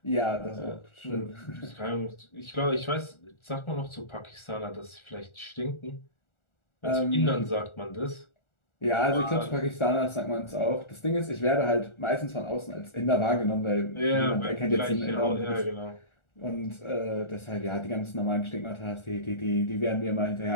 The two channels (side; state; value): right; late; 1.4 ms